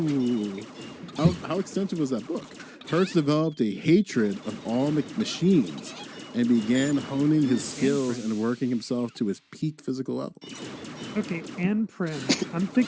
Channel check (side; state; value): both; identical; correlation 1.00